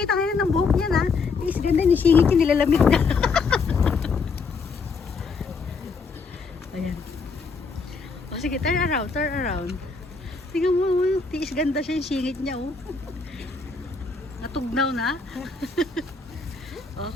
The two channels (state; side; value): quieter; right; 4.6 dB